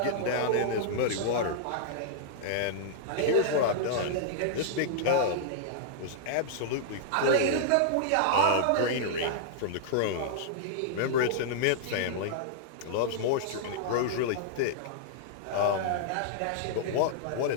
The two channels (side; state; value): both; different; correlation -0.01